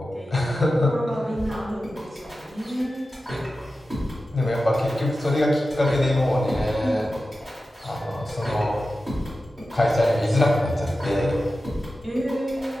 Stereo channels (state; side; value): normal; both; correlation 0.93